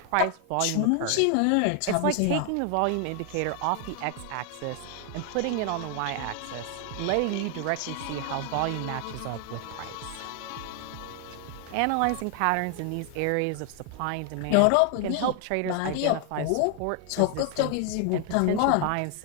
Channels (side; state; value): both; different; correlation 0.00